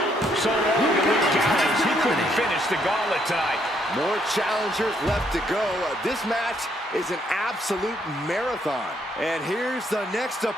So long to Luke Gallows. He couldn't finish the gauntlet tonight. More challengers left to go. This match is an absolute marathon. And here's the next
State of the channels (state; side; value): normal; both; correlation 0.71